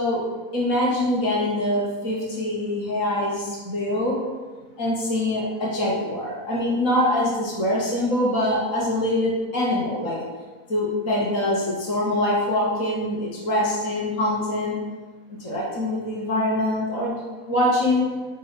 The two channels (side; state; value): right; late; 4.1 ms